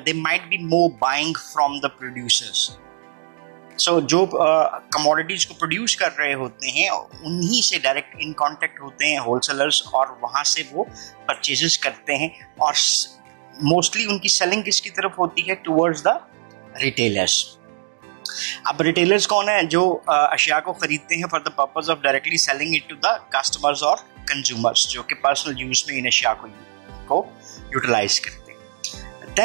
might be more buying from the producers. So जो कमोडिटीज को प्रोड्यूस कर रहे होते हैं उन्हीं से डायरेक्ट इन कांटेक्ट होते हैं होलसेलर्स, और वहां से वो परचेजेस करते हैं, और मोस्टली उनकी सेलिंग किसकी तरफ होती है, टुवर्ड्स द रिटेलर्स। अब रिटेलर्स कौन है, जो अशिया को खरीदते हैं for the purpose of directly selling it to the customers और कंज्यूमर्स, जो कि पर्सनल यूज में इन अशिया को यूटिलाइज करते हैं।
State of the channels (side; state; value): left; silent; digital silence